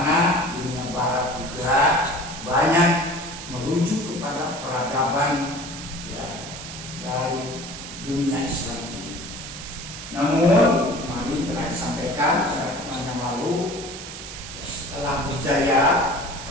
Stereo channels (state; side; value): noise; right; hiss, 11 dB below the sound